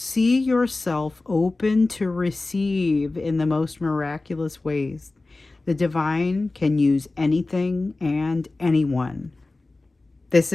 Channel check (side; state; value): right; quieter; 3.2 dB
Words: yourself open to receive in the most miraculous ways. The divine can use anything and anyone. This